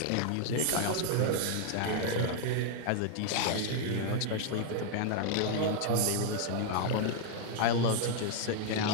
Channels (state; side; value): different; both; correlation 0.00